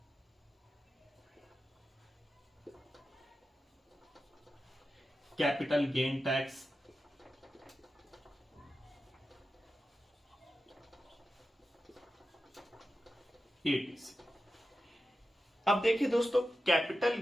Capital gain tax, ETC। अब देखिए दोस्तों, capital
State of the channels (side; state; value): both; normal; correlation 0.92